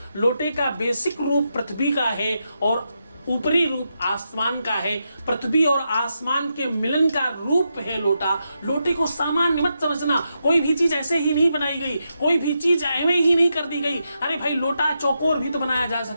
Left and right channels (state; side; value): inverted; both; correlation -0.84